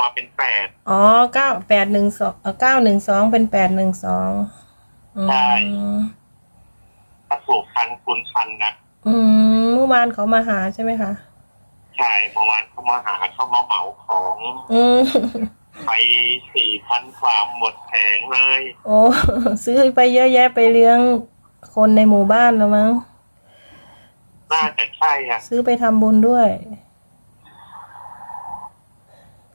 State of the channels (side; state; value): both; inverted; correlation -1.00